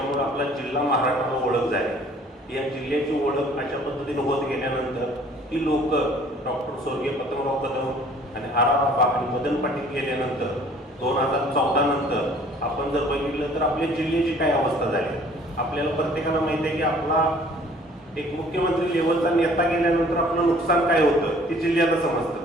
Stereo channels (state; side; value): normal; both; correlation 0.54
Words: आपला जिल्हा महाराष्ट्राला ओळख झाली. या जिल्ह्याची ओळख अशा पद्धतीने होत गेल्यानंतर ती लोक डॉक्टर स्वर्गीय पतंगराव कदम आणि आराबाबा आणि मदन पाटील गेल्यानंतर 2014 नंतर आपण जर बघितलं तर आपल्या जिल्ह्याची काय अवस्था झाली. आपल्याला प्रत्येकाला माहिती आहे की आपला एक मुख्यमंत्री लेवलचा नेता गेल्यानंतर आपलं नुकसान काय होतं ते जिल्ह्याला समजतं.